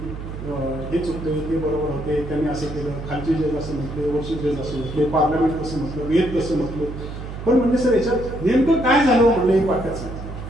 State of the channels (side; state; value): right; noise; hum, 9 dB below the sound